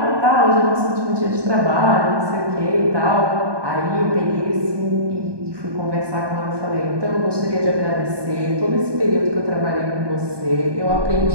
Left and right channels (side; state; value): left; late; 1.2 ms